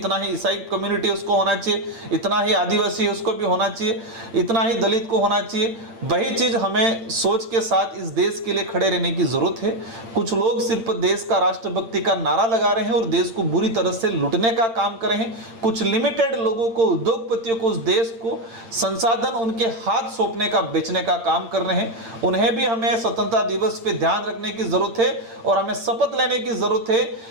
ही ईसाई कम्युनिटी उसको होना चाहिए, इतना ही आदिवासी है उसको भी होना चाहिए, इतना ही दलित को होना चाहिए। वही चीज़ हमें सोच के साथ इस देश के लिए खड़े रहने की ज़रूरत है। कुछ लोग सिर्फ देश का राष्ट्रभक्ति का नारा लगा रहे हैं और देश को बुरी तरह से लूटने का काम कर रहे हैं। कुछ लिमिटेड लोगों को, उद्योगपतियों को, उस देश को संसाधन उनके हाथ सौंपने का, बेचने का काम कर रहे हैं। उन्हें भी हमें स्वतंत्रता दिवस पे ध्यान रखने की जरूरत है और हमें शपथ लेने की जरूरत है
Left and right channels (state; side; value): late; left; 8.8 ms